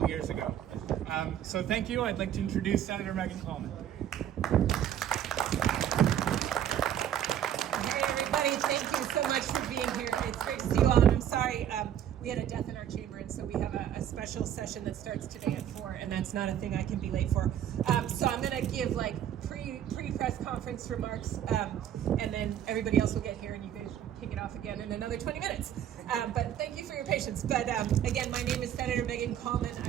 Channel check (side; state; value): left; quieter; 10.3 dB